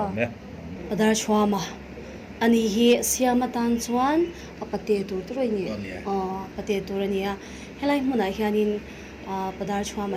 Padar chua mà anh hi siama tan chuan apate tu rồi nhỉ apate tu rồi nhỉ helai muốn ai hianin padar chua mà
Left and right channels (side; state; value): both; identical; correlation 1.00